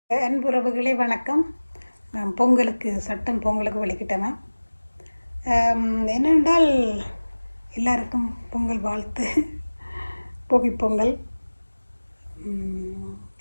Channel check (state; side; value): inverted; both; correlation -1.00